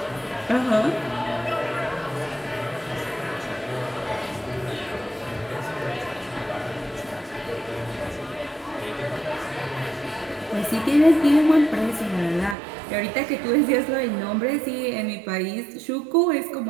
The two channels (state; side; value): drops out; left; at 12.6 s